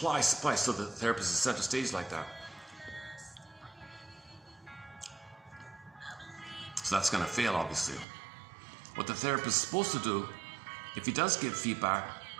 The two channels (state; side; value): drops out; left; at 8.1 s